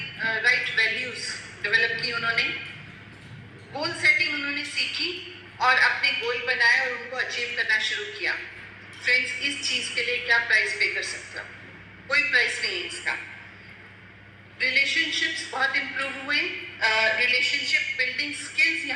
राइट वैल्यूज डेवलप की उन्होंने, गोल सेटिंग उन्होंने सीखी और अपने गोल बनाए और उनको अचीव करना शुरू किया। फ्रेंड्स, इस चीज के लिए क्या प्राइस पे कर सकते हो? कोई प्राइस नहीं है इसका। रिलेशनशिप्स बहुत इंप्रूव हुए, रिलेशनशिप बिल्डिंग स्किल्स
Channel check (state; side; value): identical; both; correlation 1.00